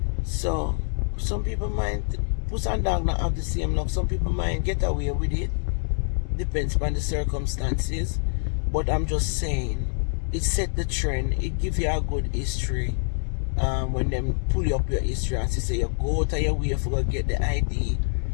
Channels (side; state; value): right; silent; 57 dB below the other